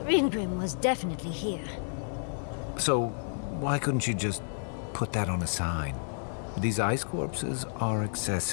Ringrim was definitely here. So, why couldn't you just put that on a sign? These ice corpses are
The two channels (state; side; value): silent; right; digital silence